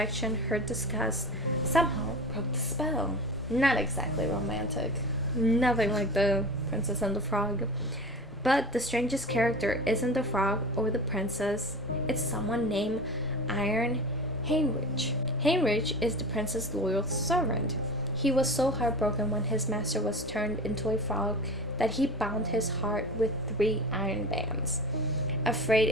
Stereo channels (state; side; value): normal; both; correlation 0.32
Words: her disgust somehow broke the spell. Not exactly romantic. Nothing like the Princess and the Frog. But the strangest character isn't the frog or the princess. It's someone named Iron Heinrich. Heinrich is the prince's loyal servant. He was so heartbroken when his master was turned into a frog that he bound his heart with 3 iron bands, afraid